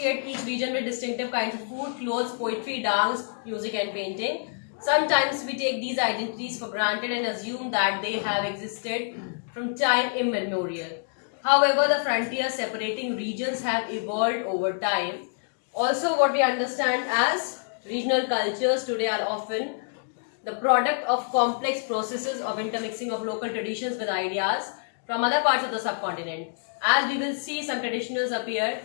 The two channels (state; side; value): silent; right; digital silence